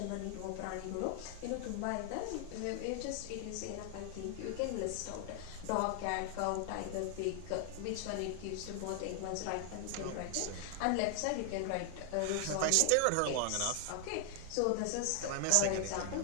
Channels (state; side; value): different; both; correlation 0.00